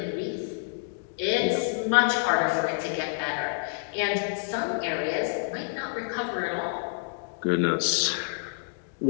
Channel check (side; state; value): right; silent; digital silence